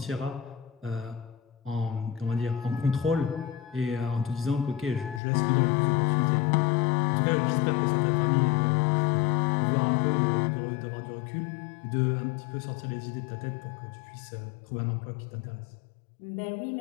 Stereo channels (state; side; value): drops out; right; at 5.2 s